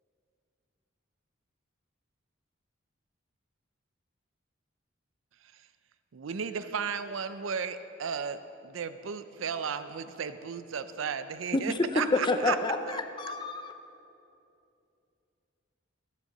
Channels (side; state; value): both; normal; correlation 0.21